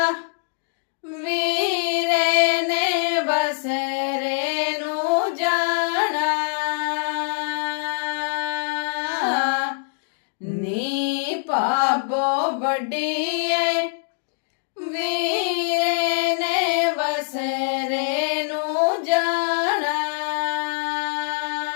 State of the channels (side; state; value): right; silent; digital silence